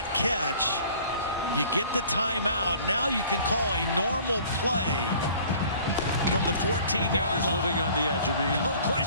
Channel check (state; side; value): inverted; both; correlation -0.50